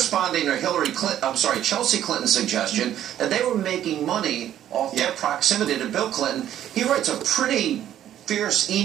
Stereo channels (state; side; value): quieter; left; 11.4 dB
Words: to Chelsea Clinton's suggestion that they were making money off their proximity to Bill Clinton. He writes a pretty fierce